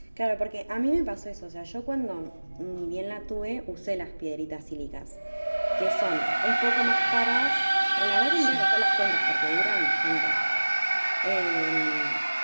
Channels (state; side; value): inverted; both; correlation -1.00